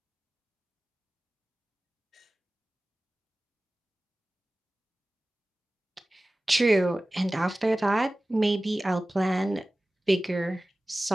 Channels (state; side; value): normal; both; correlation 0.97